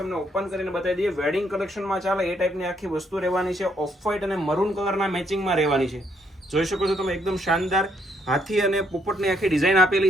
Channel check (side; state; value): both; normal; correlation 0.72